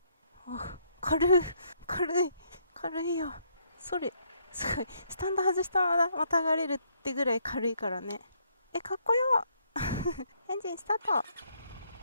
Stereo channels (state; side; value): inverted; both; correlation -0.71